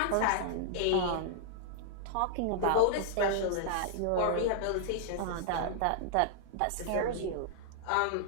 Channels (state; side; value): different; both; correlation -0.01